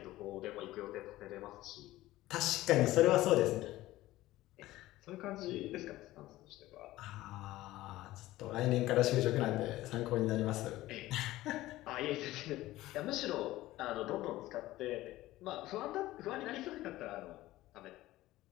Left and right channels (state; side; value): quieter; right; 16.6 dB